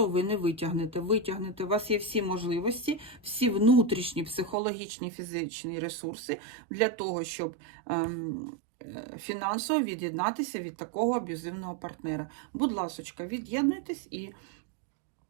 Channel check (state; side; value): drops out; left; at 4.5 s